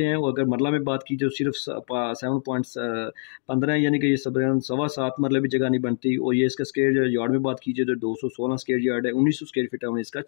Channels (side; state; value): right; silent; 62 dB below the other